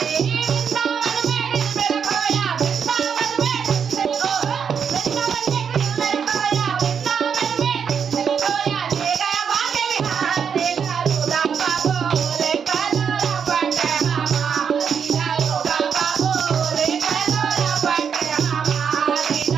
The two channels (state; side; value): quieter; left; 7.0 dB